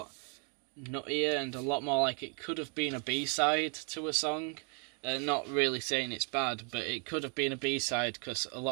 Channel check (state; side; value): quieter; left; 38.8 dB